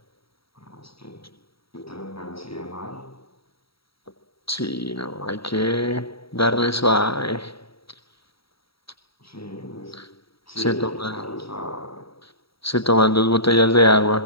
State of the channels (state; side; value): late; right; 0.75 ms